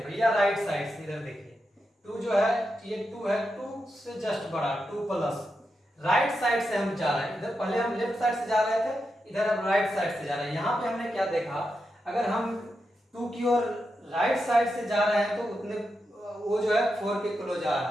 भैया, राइट साइड से। इधर देखिए 2 जो है ये 2 है, 2 से जस्ट बड़ा 2 प्लस राइट साइड से हम जा रहे हैं। इधर पहले हम लेफ्ट साइड से जा रहे थे, इधर हम राइट साइड से जा रहे हैं। यहाँ पे हमने क्या देखा, अगर हम 2 की ओर राइट साइड से जा रहे हैं तो उतने वो जो है 4 के क्लोज आ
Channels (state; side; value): normal; both; correlation 0.87